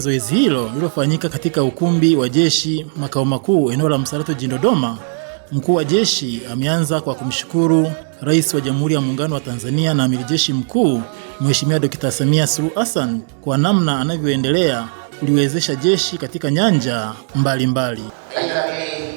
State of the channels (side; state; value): left; silent; digital silence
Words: hilo lililofanyika katika ukumbi wa jeshi makao makuu eneo la Msalato jijini Dodoma, mkuu wa jeshi ameanza kwa kumshukuru Rais wa Jamhuri ya Muungano wa Tanzania na Amiri Jeshi Mkuu Mheshimiwa Dr. Samia Suluhu Hassan kwa namna anavyoendelea kuliwezesha jeshi katika nyanja mbalimbali.